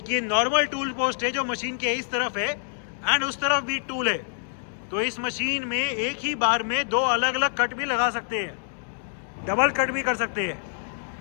ये नॉर्मल टूल पोस्ट है जो मशीन के इस तरफ है एंड उस तरफ भी टूल है. तो इस मशीन में एक ही बार में दो अलग अलग कट भी लगा सकते हैं, डबल कट भी कर सकते हैं.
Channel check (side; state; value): right; silent; digital silence